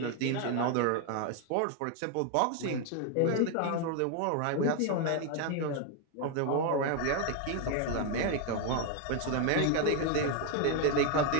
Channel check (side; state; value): both; different; correlation 0.01